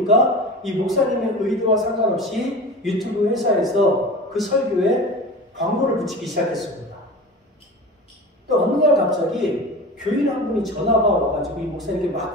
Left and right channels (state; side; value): normal; both; correlation 0.33